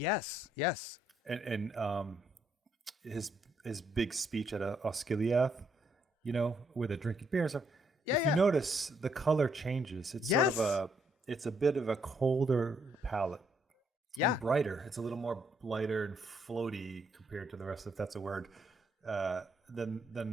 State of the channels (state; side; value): normal; both; correlation 0.72